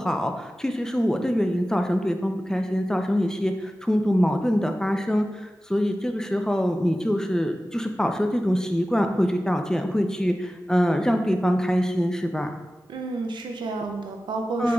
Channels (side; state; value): both; normal; correlation 0.95